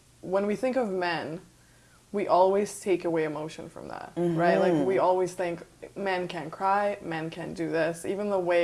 when we think of men, we always take away emotion from that, right? Like we always think men can't cry, men can't do this. Even the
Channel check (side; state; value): both; identical; correlation 1.00